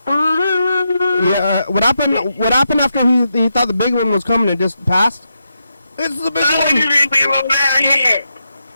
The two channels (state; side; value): inverted; both; correlation -0.84